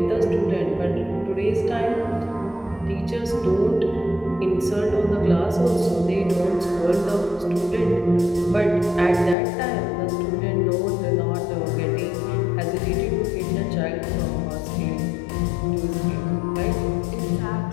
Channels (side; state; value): right; drops out; at 9.3 s